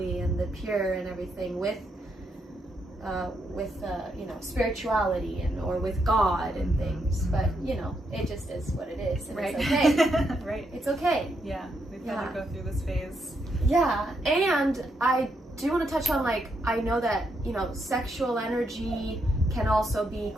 and the pure and everything with spirituality or with God and things, but it just is what it is, and it's okay. Right. It's okay. We've got to go through this phase. And I do want to touch on, like, I know that sexual energy can also be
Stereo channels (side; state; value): both; normal; correlation 0.79